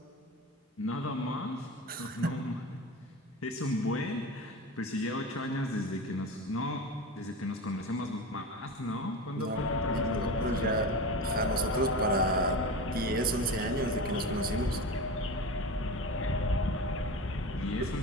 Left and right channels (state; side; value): normal; both; correlation 0.28